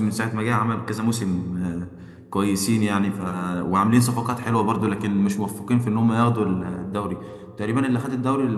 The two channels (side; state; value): both; identical; correlation 1.00